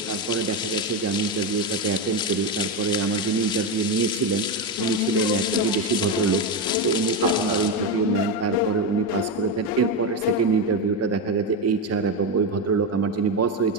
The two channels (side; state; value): both; normal; correlation 0.11